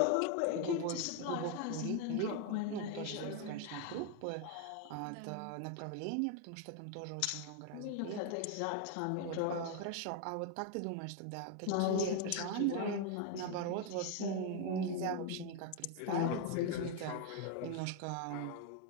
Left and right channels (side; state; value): both; different; correlation 0.01